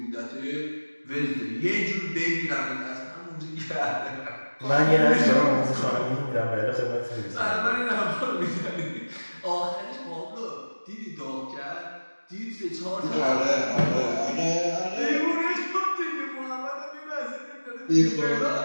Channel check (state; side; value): inverted; both; correlation -1.00